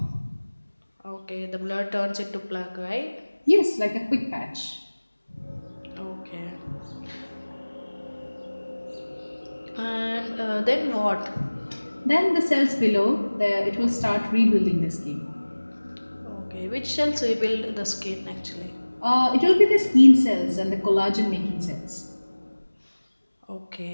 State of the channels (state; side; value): inverted; both; correlation -1.00